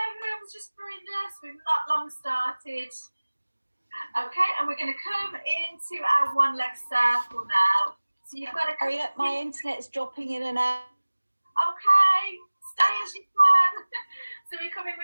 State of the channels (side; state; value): both; inverted; correlation -1.00